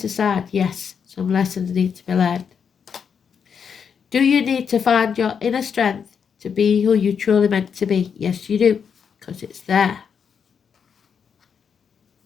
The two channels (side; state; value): right; quieter; 6.8 dB